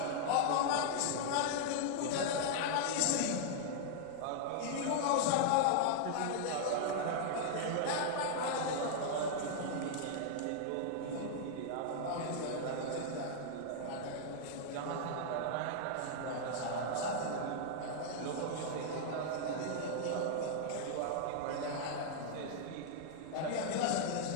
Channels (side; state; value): both; different; correlation -0.01